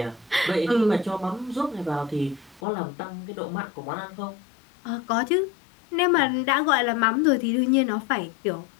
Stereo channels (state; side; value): drops out; right; at 2.6 s